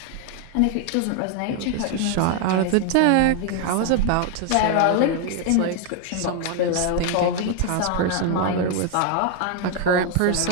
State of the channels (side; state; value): both; different; correlation 0.01